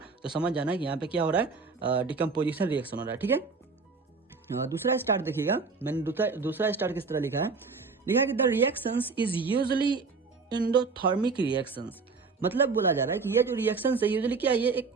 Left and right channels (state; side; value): quieter; left; 4.5 dB